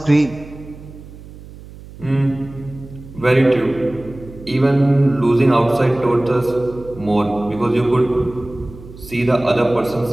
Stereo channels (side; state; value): right; noise; hum, 17 dB below the sound